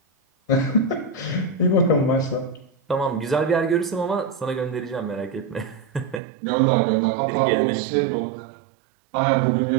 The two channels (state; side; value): drops out; left; at 6.2 s